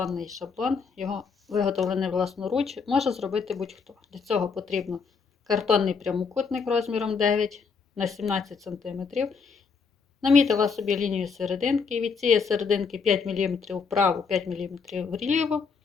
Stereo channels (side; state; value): right; quieter; 5.4 dB